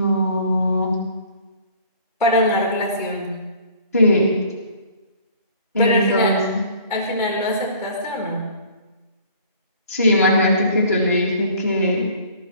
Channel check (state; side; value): inverted; both; correlation -0.51